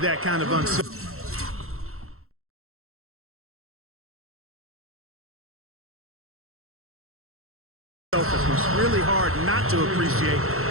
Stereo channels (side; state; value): left; late; 0.63 ms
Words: kind of unselfishness. Really hard not to appreciate